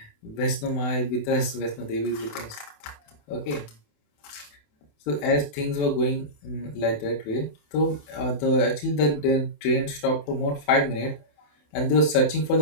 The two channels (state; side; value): late; right; 28 ms